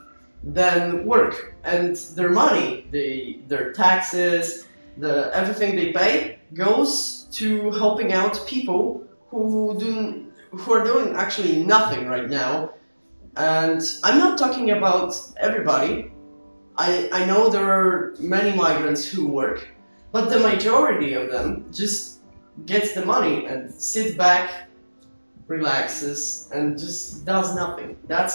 then work, and their money, their taxes, everything they pay goes to helping out people who are doing actually nothing right now, And I'm not talking about everybody. I know there are many migrants who work, but the majority of them just gets the money and sits back, relaxes, and just does nothing.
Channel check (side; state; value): both; inverted; correlation -1.00